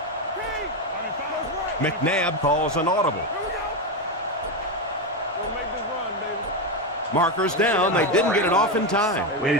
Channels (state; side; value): normal; both; correlation 0.11